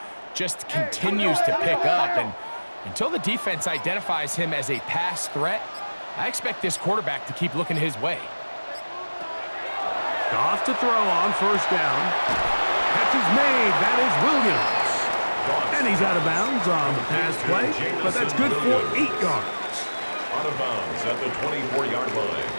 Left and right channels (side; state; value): both; inverted; correlation -1.00